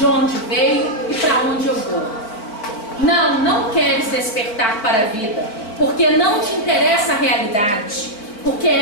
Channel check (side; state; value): right; late; 4.5 ms